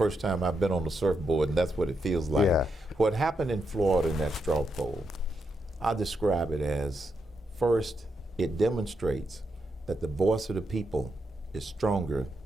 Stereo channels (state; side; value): normal; both; correlation 0.83